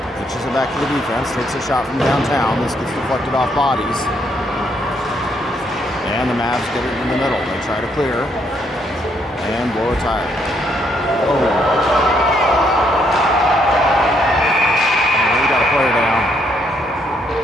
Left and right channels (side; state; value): both; normal; correlation 0.72